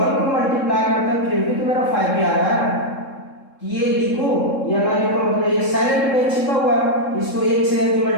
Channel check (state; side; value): late; right; 3.7 ms